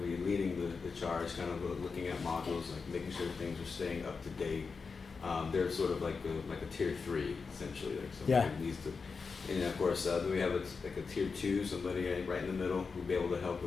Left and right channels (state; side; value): quieter; right; 4.9 dB